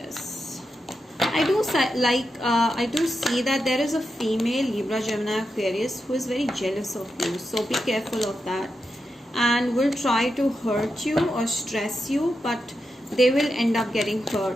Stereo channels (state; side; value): normal; both; correlation 0.87